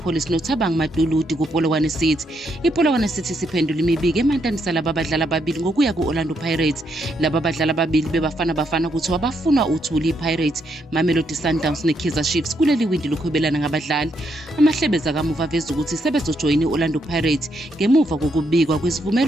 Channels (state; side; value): normal; both; correlation 0.77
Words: noThabang Maduludi kuPolokwane City. iPolokwane City siphendula imibiko emantanisa laba badlali ababili ngokuya ku-Orlando Pirates. Laba badlali ababili bebafana kuthiwa bafuna uthuli iPirates, Mamelodi Sundowns neKaizer Chiefs kuleli windi lokuhwebelana ngabadlali. Amahlebeza kamuva aveza ukuthi sebezojoyina i-Orlando Pirates ngemuva kokubikwa